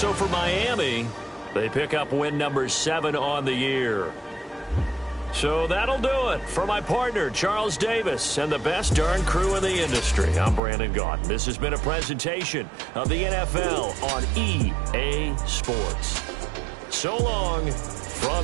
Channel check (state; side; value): drops out; left; at 10.6 s